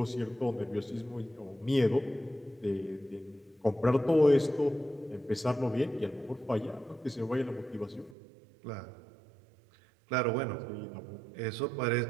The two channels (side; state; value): left; drops out; at 8.2 s